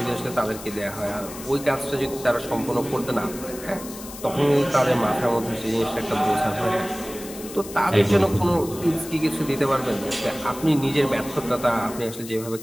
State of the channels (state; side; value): noise; left; hiss, 14 dB below the sound